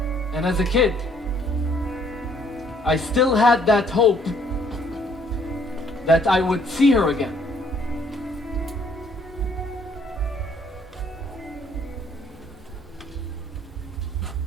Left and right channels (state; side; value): normal; both; correlation 0.64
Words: And as a kid, I still had that hope that I would see her again.